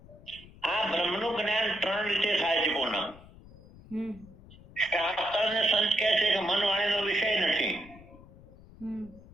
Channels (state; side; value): noise; left; rumble, 21 dB below the sound